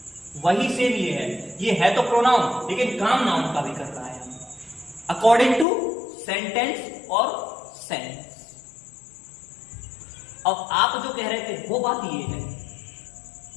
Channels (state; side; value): drops out; right; at 5.7 s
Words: वही सेम ये है तो प्रोनाउन, लेकिन काम नाउन का भी कर रहा है, अकॉर्डिंग टू सेंटेंस और सेंस। अब आप जो कह रहे थे वो बात ये है,